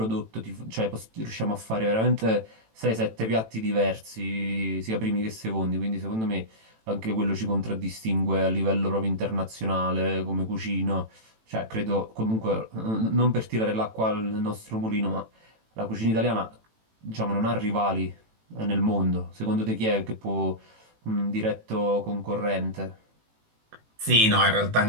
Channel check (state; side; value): late; left; 18 ms